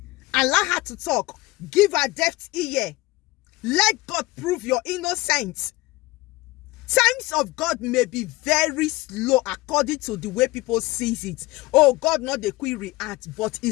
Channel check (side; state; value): right; quieter; 20.3 dB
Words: Allow her to talk. Give her deaf ear. Let God prove your innocence. Times of God may be very slow according to the way people sees it. Oh, God not the quick react, but